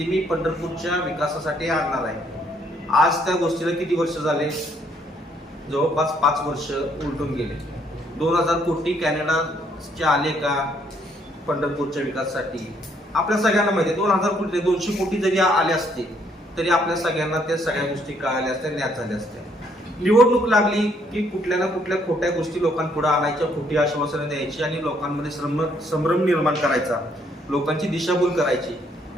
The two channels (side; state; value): both; normal; correlation 0.68